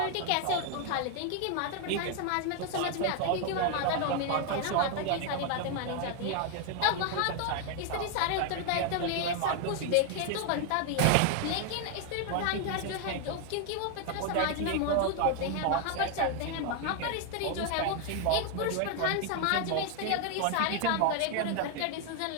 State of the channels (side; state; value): both; different; correlation 0.01